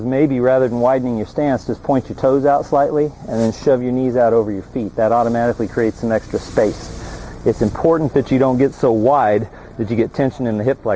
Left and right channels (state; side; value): identical; both; correlation 1.00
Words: maybe rather than widening your stance, just point your toes out slightly and then shove your knees out over your feet. That automatically creates some extra space. It's important that you don't get so wide that you get tension in the hip